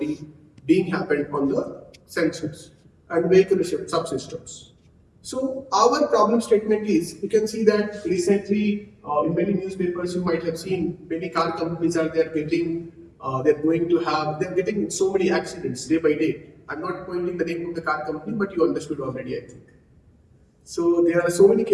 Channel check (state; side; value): identical; both; correlation 1.00